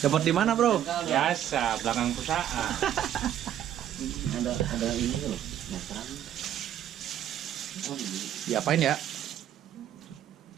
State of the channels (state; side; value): quieter; left; 10.9 dB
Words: di mana, Bro? Biasa, belakang perusahaan. Ada ini loh. Makan. Oh, ini. Diapain ya?